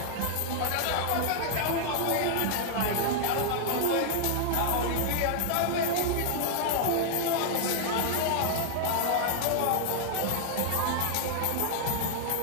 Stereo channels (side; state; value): both; different; correlation 0.00